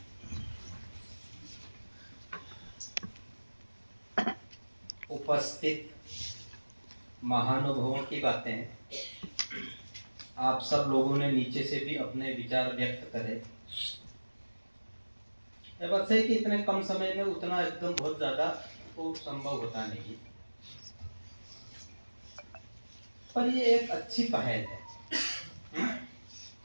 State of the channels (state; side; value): inverted; both; correlation -1.00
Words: उपस्थित महानुभावों की बातें आप सब लोगों ने नीचे से भी अपने विचार व्यक्त करे। ये बात सही कि इतने कम समय में उतना एकदम बहुत ज्यादा तो संभव होता नहीं, पर ये एक अच्छी पहल है।